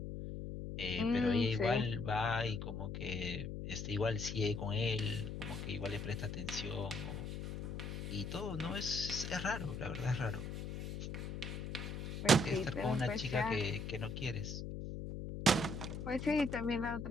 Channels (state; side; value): noise; left; hum, 5 dB below the sound